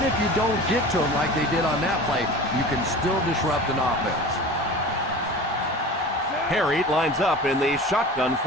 if you don't get to him like they did on that play, you can still disrupt an offense. Harry lines up in the shotgun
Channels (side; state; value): both; normal; correlation 0.36